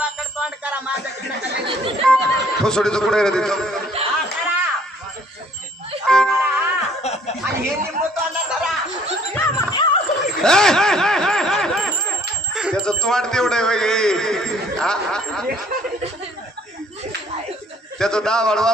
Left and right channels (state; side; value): normal; both; correlation 0.59